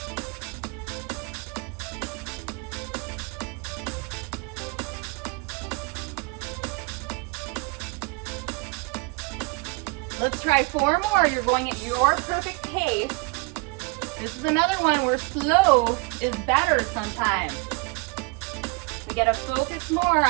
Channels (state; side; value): quieter; left; 29.0 dB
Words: Let's try 4 more. You're going at your perfect pace. This is another one where slow is better sometimes. We gotta focus more